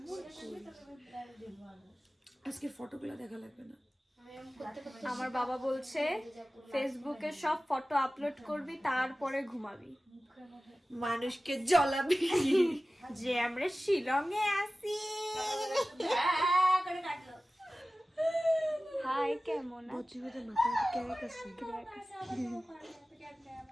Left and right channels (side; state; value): both; normal; correlation 0.97